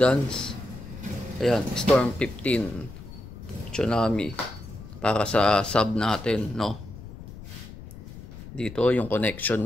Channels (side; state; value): left; noise; rumble, 14 dB below the sound